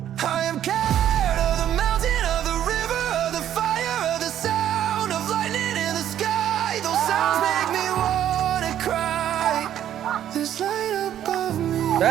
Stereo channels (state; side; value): quieter; left; 10.9 dB